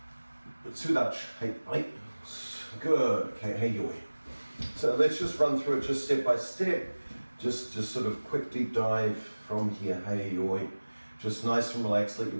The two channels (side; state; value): both; inverted; correlation -1.00